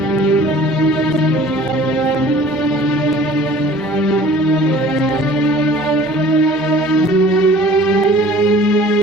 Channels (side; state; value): both; normal; correlation 0.49